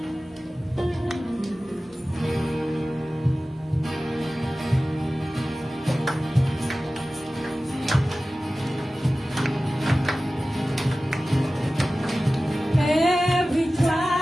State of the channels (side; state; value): both; normal; correlation 0.96